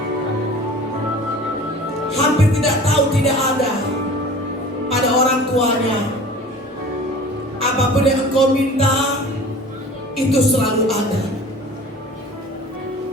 hampir tidak tahu, tidak ada pada orang tuanya. Apapun yang engkau minta, itu selalu ada.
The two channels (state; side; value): normal; both; correlation 0.42